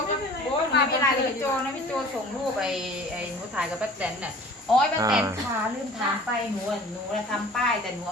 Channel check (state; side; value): normal; both; correlation 0.46